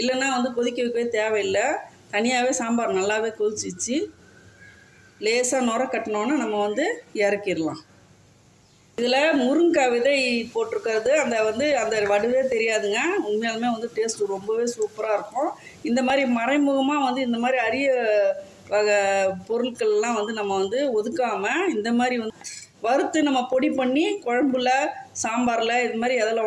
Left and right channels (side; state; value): both; identical; correlation 1.00